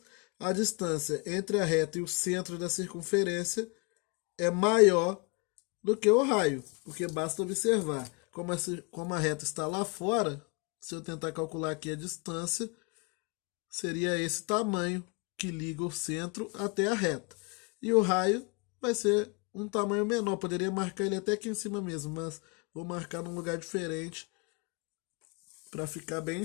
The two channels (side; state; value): right; quieter; 32.1 dB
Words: a distância entre a reta e o centro da circunferência é maior do que o raio, porque basta observar como a reta está lá fora. Se eu tentar calcular aqui a distância, seria esse tamanho que liga o centro até a reta. E o raio vai ser um tamanho menor. Poderia marcar ele até aqui em cima mesmo, mas vou marcar num lugar diferente para ficar bem